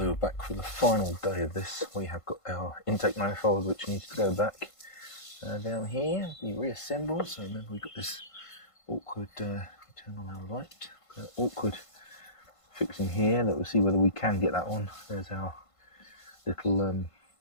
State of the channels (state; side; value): late; right; 1.5 ms